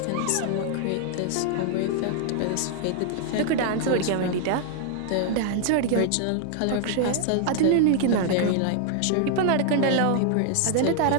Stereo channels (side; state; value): both; different; correlation -0.01